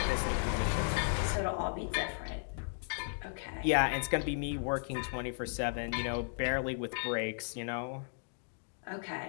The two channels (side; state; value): right; silent; digital silence